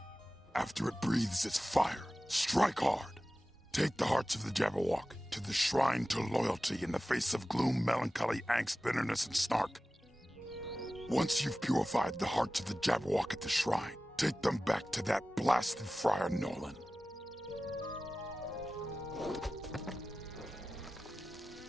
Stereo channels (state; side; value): normal; both; correlation 0.96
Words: After it breathes its fire, strike hard. Take the hearts of the Jabberwock to the Shrine to Loyalty in the face of gloom, melancholy, angst, bitterness, and snark. Once you've purified the hearts of the Jabberwock at the shrine, take them back to that blasted Friar Nolan.